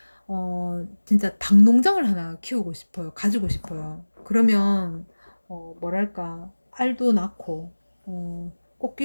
진짜 닭 농장을 하나 키우고 싶어요. 가지고 싶어요. 그러면 뭐랄까 알도 낳고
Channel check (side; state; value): both; inverted; correlation -1.00